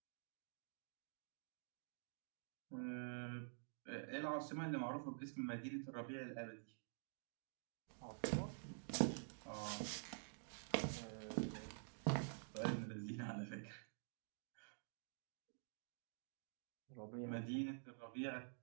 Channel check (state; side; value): silent; left; digital silence